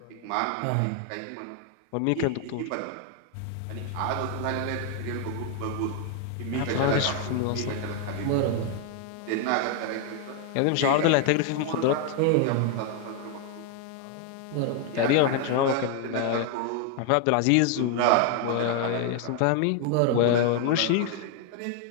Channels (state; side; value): different; both; correlation 0.00